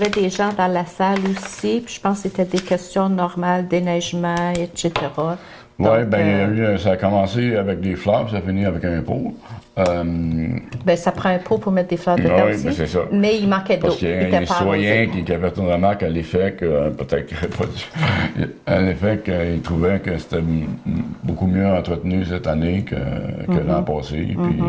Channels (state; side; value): identical; both; correlation 1.00